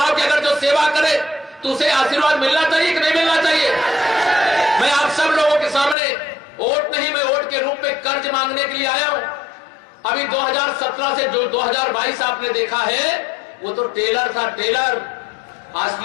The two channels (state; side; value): drops out; right; at 6.0 s